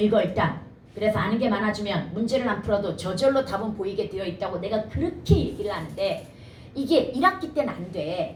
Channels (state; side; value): identical; both; correlation 1.00